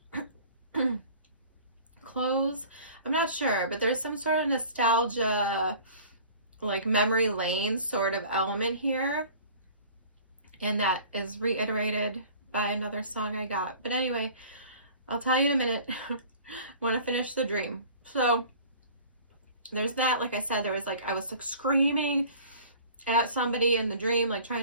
clothes, I'm not sure, but there's some sort of nostalgia, like memory lane sort of element here, and that is reiterated by another song I got. But anyway, I'll tell you in a minute. Want to finish the dream. So there's that. Like I said, there was like, I was like screaming at somebody in the dream, like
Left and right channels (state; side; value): inverted; both; correlation -0.46